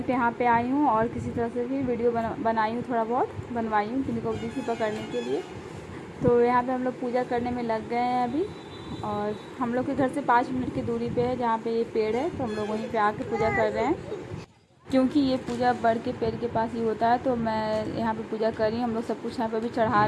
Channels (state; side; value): identical; both; correlation 1.00